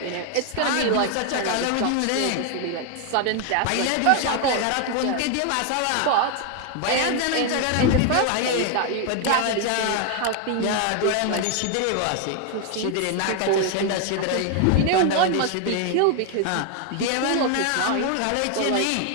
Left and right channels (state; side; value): different; both; correlation 0.01